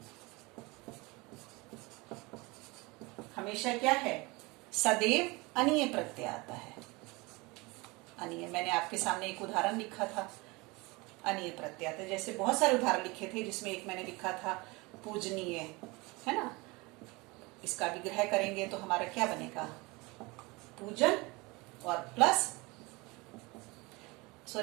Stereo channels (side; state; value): left; quieter; 24.8 dB